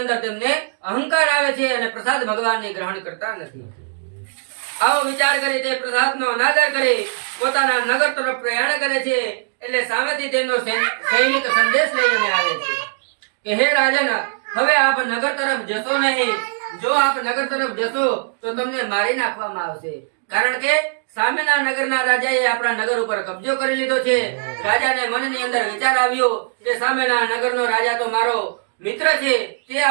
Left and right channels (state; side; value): silent; left; digital silence